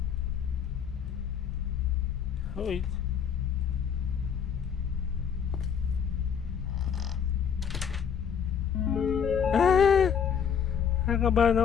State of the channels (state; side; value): quieter; right; 7.6 dB